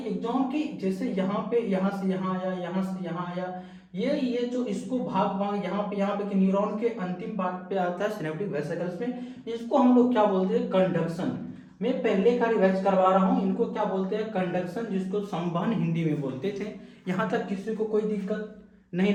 एक्सॉन की, जैसे यहाँ पे, यहाँ से यहाँ आया, यहाँ से यहाँ आया, ये जो इसको भाग भाग यहाँ पे कि न्यूरॉन के अंतिम पार्ट पे आता है सिनेप्टिक वेसिकल्स में, इसको हम लोग क्या बोलते हैं? कंडक्शन। मैं पहले का रिवाइज करवा रहा हूँ, इनको क्या बोलते हैं? कंडक्शन, जिसको संवहन हिंदी में बोलते थे। यहाँ तक किसी को कोई दिक्कत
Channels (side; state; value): both; identical; correlation 1.00